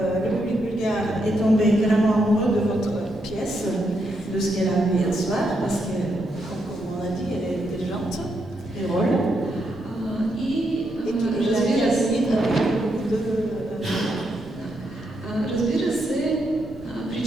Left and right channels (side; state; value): left; noise; rumble, 20 dB below the sound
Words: le public bulgare est tombé vraiment amoureux de votre pièce, de ce qu'elle a vu hier soir, parce que, comme on a dit, elle est intelligente, drôle. Разбира се,